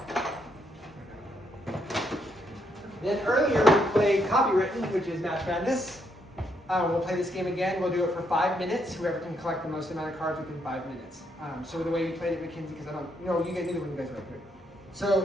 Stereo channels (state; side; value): normal; both; correlation 0.75